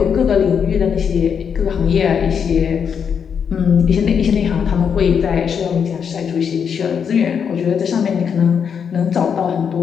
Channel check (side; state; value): right; quieter; 7.1 dB